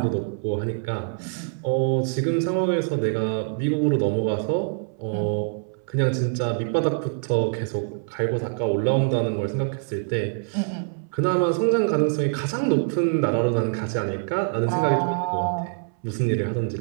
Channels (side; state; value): left; silent; 60 dB below the other